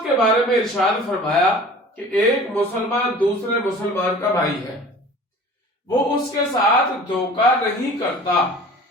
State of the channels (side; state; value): both; normal; correlation 0.43